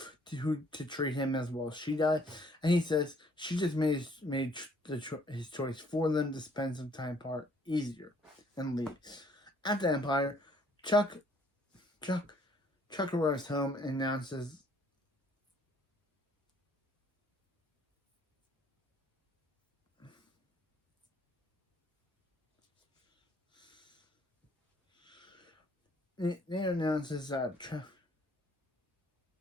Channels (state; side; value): normal; both; correlation 0.62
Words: to treat him as well as she does, and he says she just made his choice for them to spend some time apart easier, and leaves. At the Empire, Chuck arrives home and announces that